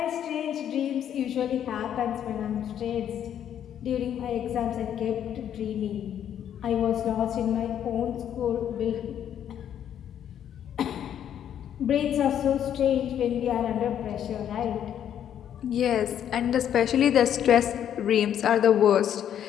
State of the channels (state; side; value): quieter; right; 9.8 dB